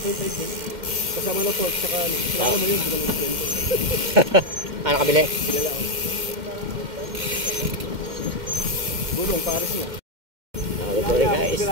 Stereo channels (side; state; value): left; late; 2.1 ms